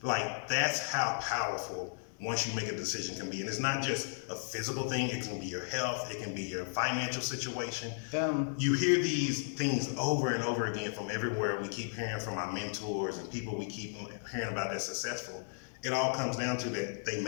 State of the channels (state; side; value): silent; right; 55 dB below the other